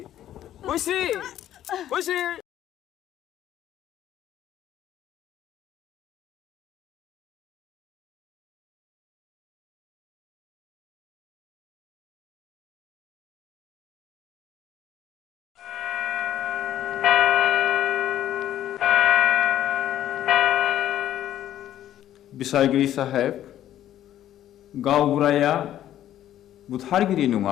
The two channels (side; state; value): right; quieter; 12.0 dB